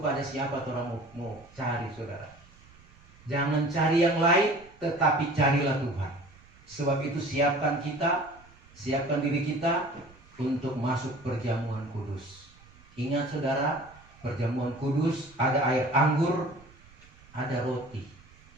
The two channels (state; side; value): noise; right; rumble, 25 dB below the sound